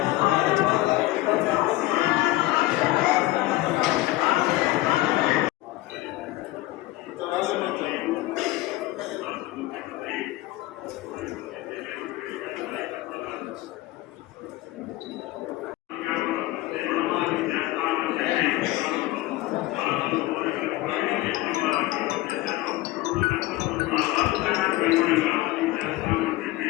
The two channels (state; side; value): quieter; right; 17.7 dB